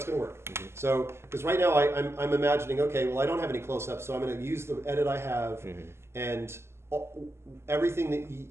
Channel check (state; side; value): late; left; 0.12 ms